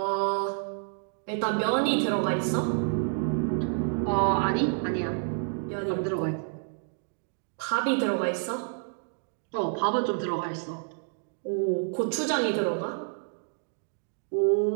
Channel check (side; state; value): left; silent; 59 dB below the other